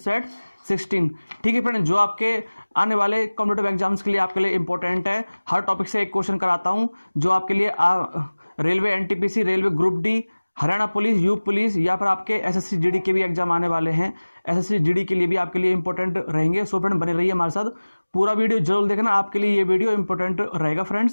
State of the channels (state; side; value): inverted; both; correlation -1.00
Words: सेट 16, ठीक है फ्रेंड, जो आपके आने वाले कॉम्पिटिटिव एग्जाम्स के लिए आपके लिए इंपॉर्टेंट है। हर टॉपिक से एक क्वेश्चन कराता हूं जो आपके लिए railway NTPC, railway group D, Haryana police, UP police या फिर आपके एसएससी जीडी के भी एग्जाम आने वाले हैं। एसएससी जीडी के लिए भी आपके लिए इंपॉर्टेंट रहेंगे। सो फ्रेंड, बने रहिए हमारे साथ, पूरा वीडियो जरूर देखना, आपके लिए ये वीडियो इंपॉर्टेंट रहेगा